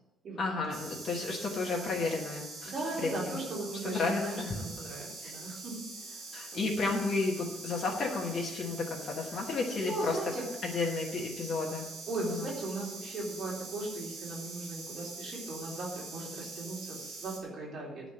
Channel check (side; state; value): both; normal; correlation 0.66